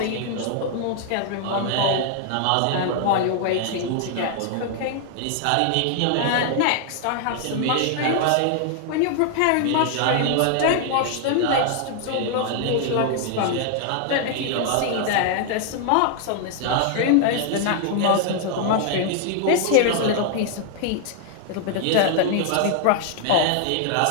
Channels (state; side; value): different; both; correlation 0.00